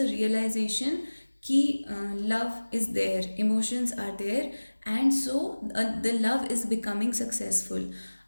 रियलाइजेशन कि love is there, emotions are there, and so the love is becoming successful.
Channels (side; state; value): both; inverted; correlation -1.00